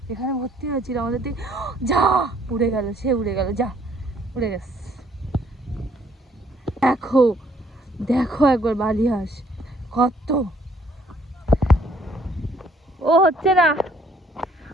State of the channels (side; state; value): both; normal; correlation 0.64